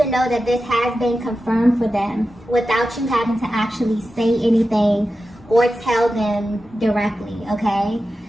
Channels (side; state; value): both; normal; correlation 0.92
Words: know that this has been confirmed for them without you having to actually say anything or tell them directly, okay?